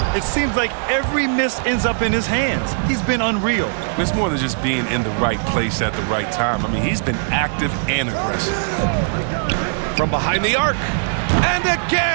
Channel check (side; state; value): left; silent; 66 dB below the other